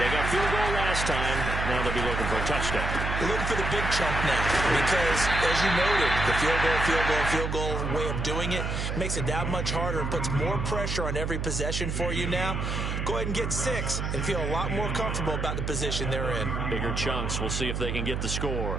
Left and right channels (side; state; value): right; noise; hum, 2 dB below the sound